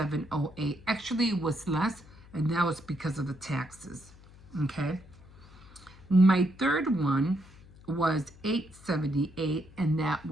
Actually, it was less, and that was because of the taxes. Okay. My third one was $8.78, and that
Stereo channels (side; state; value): left; noise; hum, 22 dB below the sound